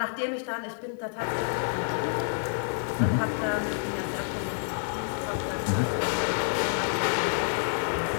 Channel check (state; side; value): silent; right; 59 dB below the other